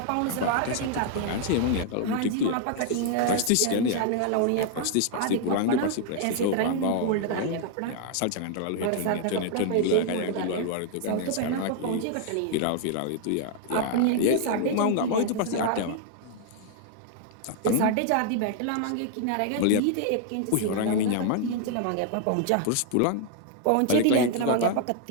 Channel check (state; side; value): different; both; correlation 0.00